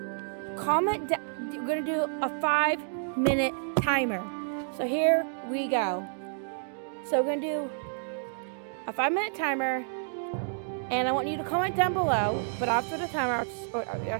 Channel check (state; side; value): silent; left; digital silence